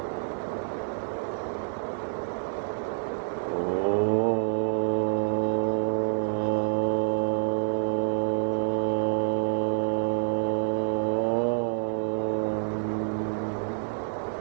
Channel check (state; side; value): silent; left; digital silence